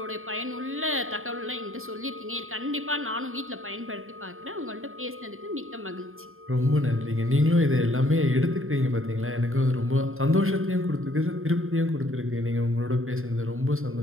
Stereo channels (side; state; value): left; late; 0.61 ms